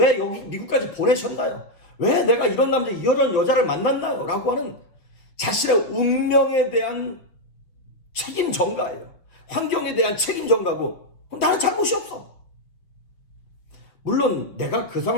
여기 미국까지 보내셨나요? 왜 내가 이런 남자 이런 여자를 만났나요? 라고 하는 자신의 운명에 대한 책임 전가예요. 환경에 대한 책임 전가고 나는 잘못이 없어. 물론 내가 그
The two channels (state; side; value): late; right; 5.7 ms